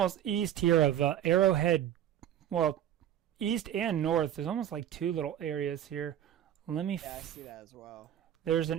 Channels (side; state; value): left; quieter; 10.7 dB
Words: east here of Arrowhead. Well, east and north. There's almost like two little areas here. Let me. Yeah, I see that as well. There's